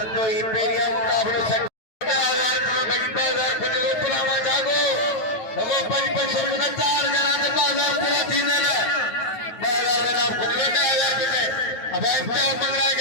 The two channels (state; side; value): late; right; 9.2 ms